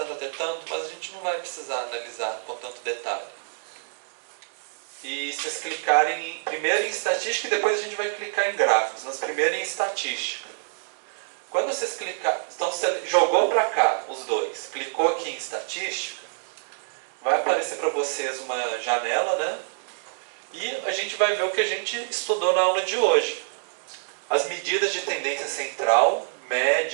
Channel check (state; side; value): silent; left; digital silence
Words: até tanto, mas a gente não vai precisar analisar com tanto detalhe. E vocês clicarem primeiro em estatística e depois a gente vai clicar em gráficos, mas primeiro em estatística. Quando vocês clicar, então você jogou para cá os dois, clicou aqui em estatística, vai aparecer para vocês uma janela, né? E a gente vai ver o que a gente estudou na aula de hoje. As medidas de tendência central,